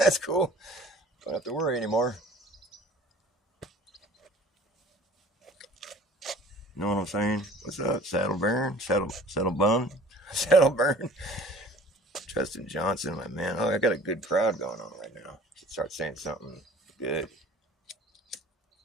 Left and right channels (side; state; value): both; normal; correlation 0.48